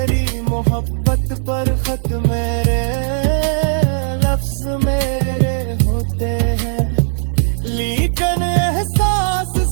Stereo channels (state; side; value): silent; left; digital silence